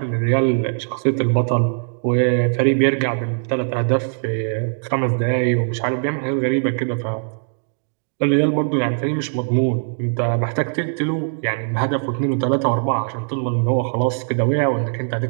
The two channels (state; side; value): silent; left; digital silence